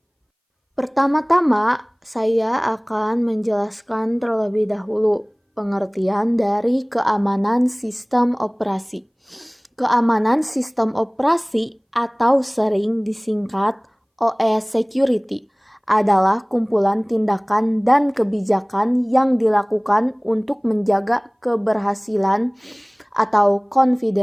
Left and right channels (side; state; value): both; identical; correlation 1.00